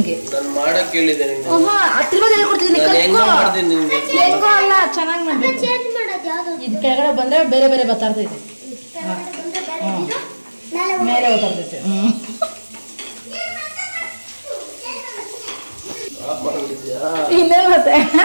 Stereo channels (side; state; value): both; inverted; correlation -1.00